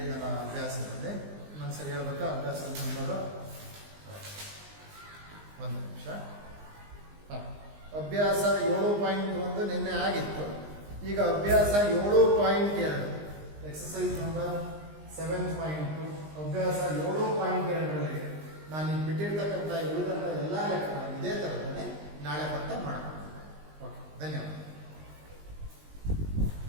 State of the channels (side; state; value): left; late; 20 ms